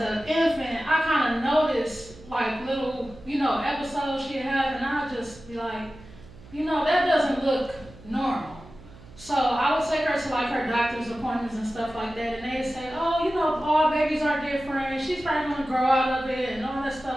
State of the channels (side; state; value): right; noise; hum, 20 dB below the sound